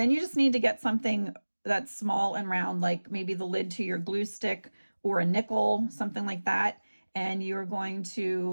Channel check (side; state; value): both; inverted; correlation -1.00